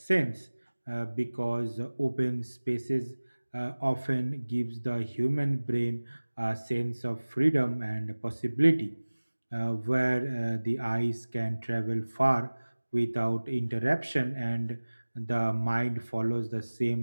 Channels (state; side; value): inverted; both; correlation -1.00